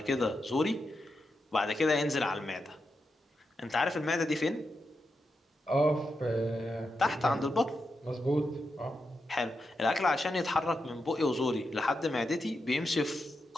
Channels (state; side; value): normal; both; correlation 0.86